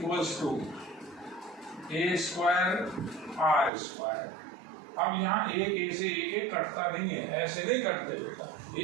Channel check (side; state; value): left; drops out; at 3.7 s